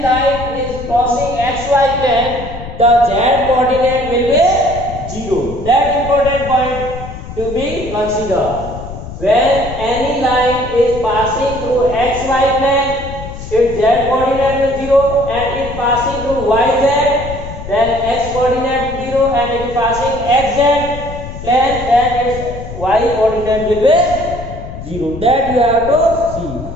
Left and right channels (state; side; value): noise; left; rumble, 10 dB below the sound